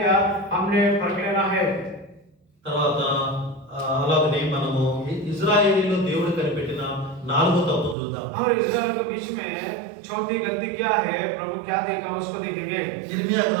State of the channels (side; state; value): left; drops out; at 8.0 s